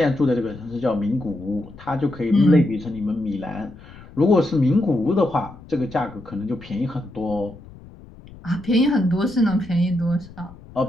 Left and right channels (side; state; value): left; noise; rumble, 19 dB below the sound